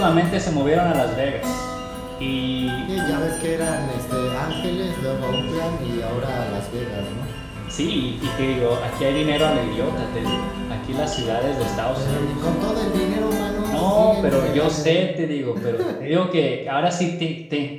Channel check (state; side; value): identical; both; correlation 1.00